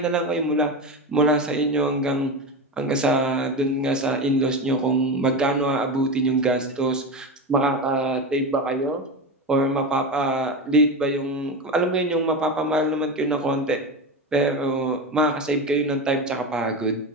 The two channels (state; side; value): normal; both; correlation 0.21